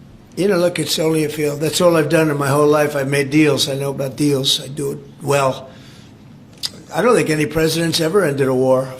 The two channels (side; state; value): both; identical; correlation 1.00